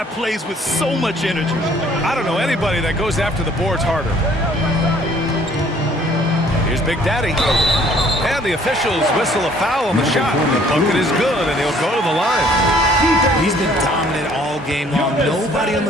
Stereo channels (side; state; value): both; normal; correlation 0.59